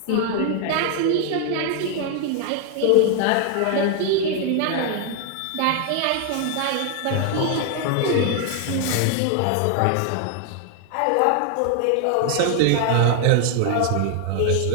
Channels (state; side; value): different; both; correlation 0.00